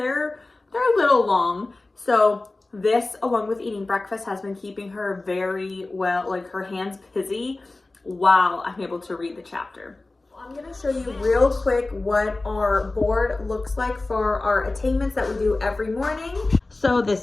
a little long. So this, along with eating breakfast, has been keeping her very well, like her hands busy while I'm able to read the chapter. I'm gonna show you real quick what our board looks like for our attainments that we do every morning. So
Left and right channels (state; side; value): quieter; right; 3.1 dB